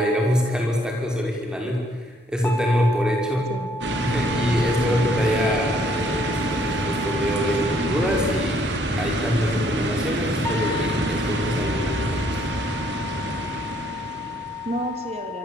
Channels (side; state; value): both; normal; correlation 0.66